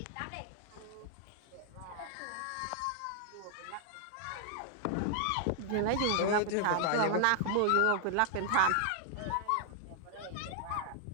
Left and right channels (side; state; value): both; different; correlation 0.00